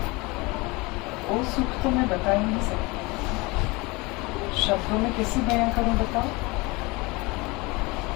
वो सुख तो मैं बता ही नहीं सकती। शब्दों में कैसे बयां करूं बताओ।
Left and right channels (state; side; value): quieter; right; 24.6 dB